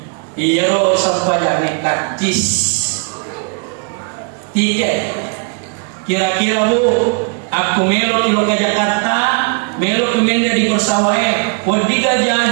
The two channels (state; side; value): quieter; left; 38.9 dB